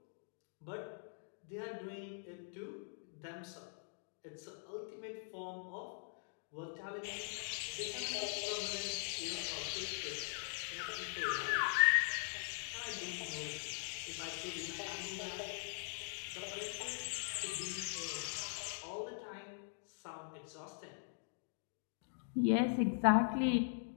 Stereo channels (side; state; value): right; silent; digital silence